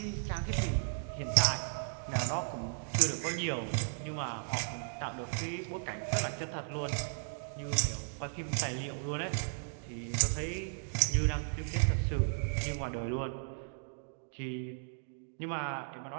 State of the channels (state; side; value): silent; left; digital silence